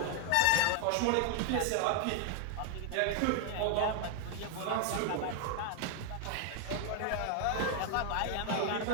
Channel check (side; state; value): both; different; correlation 0.00